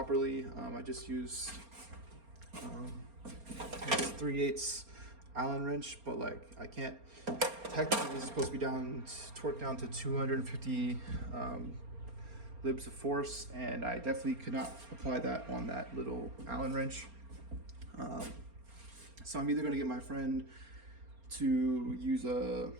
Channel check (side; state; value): left; late; 4.3 ms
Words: I just used 3/8 Allen wrench, but like I can't. Technically, this is supposed to be torqued down to 250 libs of force, and I definitely could not apply that on that little Allen wrench. So I'm either going to get my friend to use a